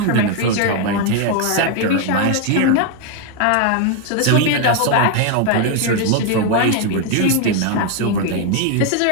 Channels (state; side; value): different; both; correlation 0.01